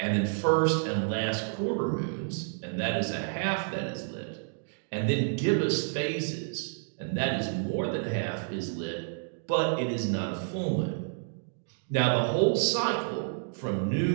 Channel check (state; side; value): silent; left; digital silence